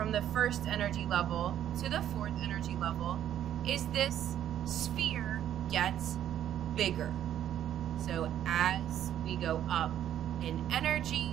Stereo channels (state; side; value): quieter; left; 10.8 dB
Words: the first energy level to the fourth energy level is this sphere gets bigger. So as we go up in